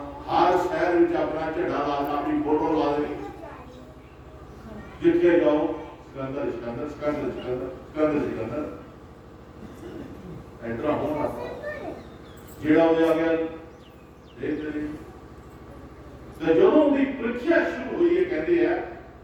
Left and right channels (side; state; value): both; identical; correlation 1.00